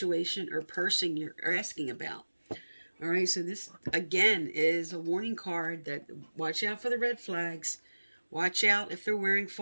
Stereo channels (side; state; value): both; inverted; correlation -1.00